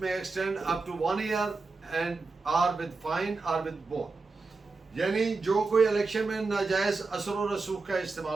may extend up to 1 year and or with fine or with both. यानी जो कोई इलेक्शन में नाजायज असर व रसूख का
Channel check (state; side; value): quieter; left; 4.0 dB